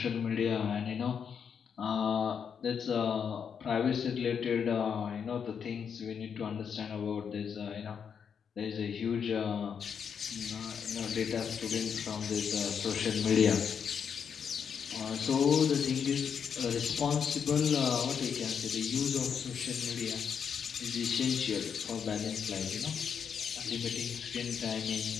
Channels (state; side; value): quieter; right; 7.1 dB